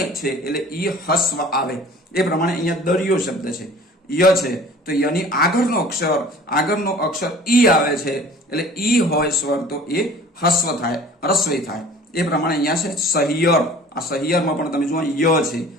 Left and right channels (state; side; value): normal; both; correlation 0.47